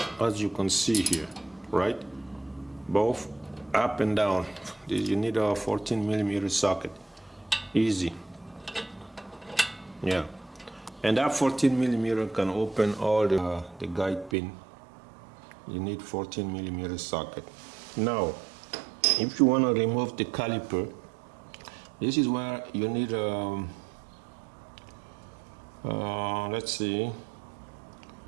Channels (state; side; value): drops out; left; at 14.4 s